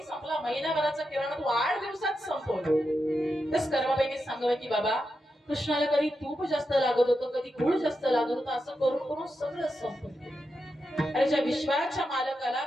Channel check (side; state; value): both; normal; correlation 0.87